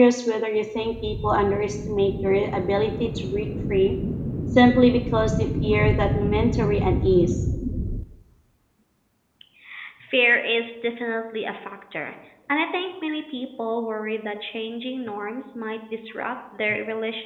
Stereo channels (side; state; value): both; identical; correlation 1.00